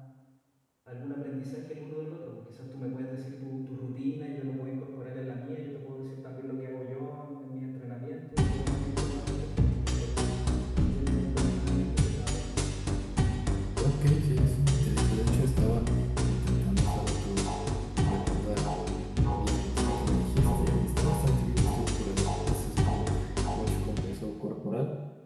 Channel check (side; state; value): both; identical; correlation 1.00